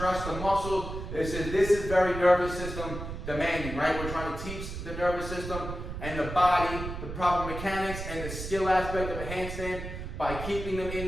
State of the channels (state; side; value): noise; right; rumble, 7 dB below the sound